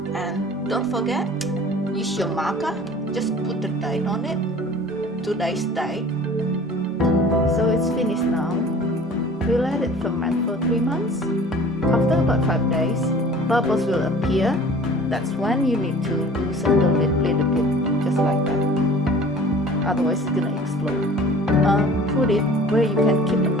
And don't forget, use your marker. Just put the date on it, today's date. So it's finished now. We let it ferment for 3 months. After about 5 days, bubbles will appear. That's when you need to loosen the lid a little bit, just like that. Otherwise it's gonna explode. Put it where you can keep an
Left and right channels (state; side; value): normal; both; correlation 0.46